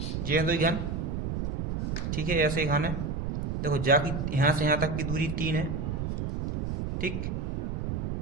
ये है 2 घन, ठीक है। ऐसे घन है। देखो जाकी यहाँ से यहाँ तक की दूरी 3 है, ठीक।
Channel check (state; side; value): noise; right; rumble, 3 dB below the sound